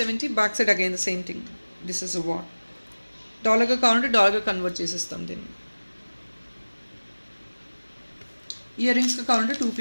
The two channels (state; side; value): inverted; both; correlation -1.00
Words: Back side again the same thing. This is a what. డాలర్గా కావాలంటే డాలర్గా కన్వర్ట్ చేసేస్తాం దీన్ని. ఇయర్ రింగ్స్గా కావాలంటే 2